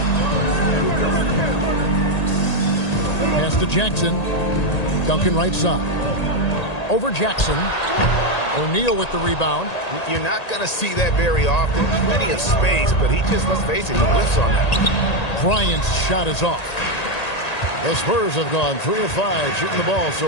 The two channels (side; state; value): right; late; 1.8 ms